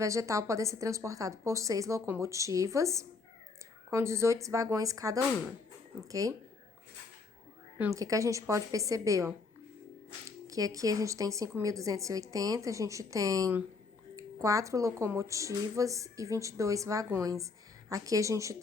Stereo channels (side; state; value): right; quieter; 4.3 dB